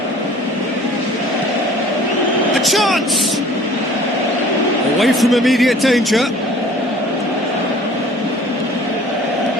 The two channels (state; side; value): normal; both; correlation 0.49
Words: A chance! Away from immediate danger.